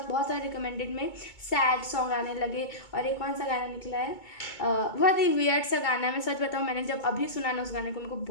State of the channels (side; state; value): right; late; 2.2 ms